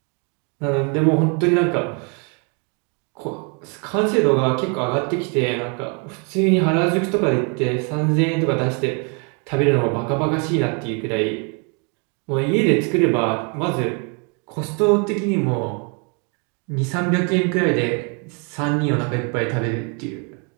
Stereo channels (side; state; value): left; quieter; 35.8 dB